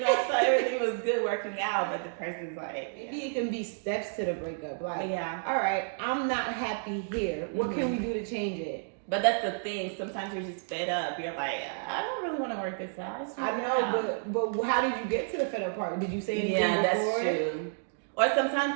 I thought everything was good working out, but the person's like, maybe it can be steps to the breakup. Like, yeah. All right, I'm not happy here. What can we do to change it? But that's the thing. Sometimes you're just fed up. You're like, I don't really want to work this out. I know, but how did you get to the fed up part? Did you say anything before? Yeah, that's true. Or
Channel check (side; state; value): left; silent; digital silence